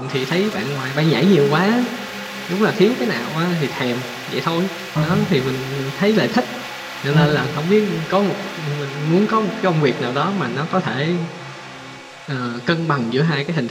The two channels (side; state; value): both; identical; correlation 1.00